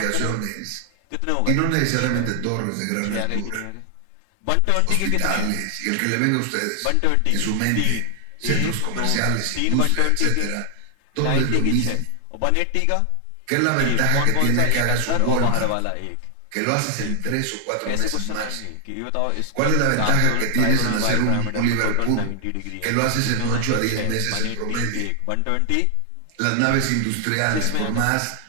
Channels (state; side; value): different; both; correlation 0.00